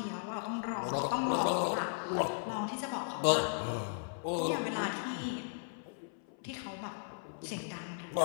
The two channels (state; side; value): silent; right; 54 dB below the other